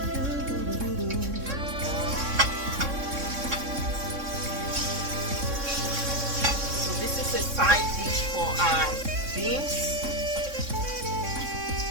Side dish for our beans.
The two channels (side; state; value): left; late; 3.6 ms